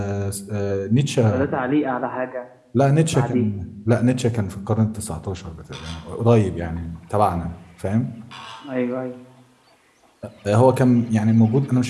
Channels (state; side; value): identical; both; correlation 1.00